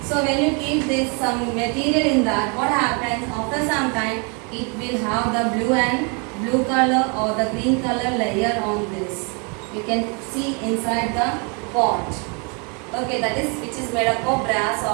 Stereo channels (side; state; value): left; quieter; 34.3 dB